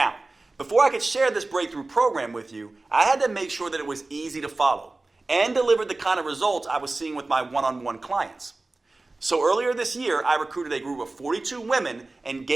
before I could share this breakthrough program with you, I had to make sure that it was easy to follow and delivered the kind of results I was seeing with my one-on-one clients. So earlier this year, I recruited a group of 42 women and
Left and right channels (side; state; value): left; quieter; 3.2 dB